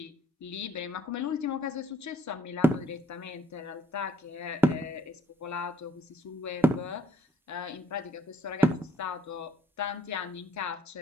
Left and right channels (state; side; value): normal; both; correlation 0.64